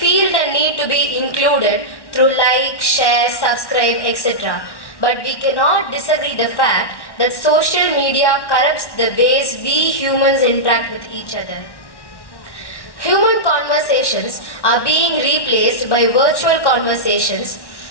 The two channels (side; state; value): right; late; 1.1 ms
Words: the need to be included through like, share, subscribe, etc. But we cannot disagree the fact that social media corrupts the ways we humans interact with each other. Human conversations are being replaced by virtual conversations,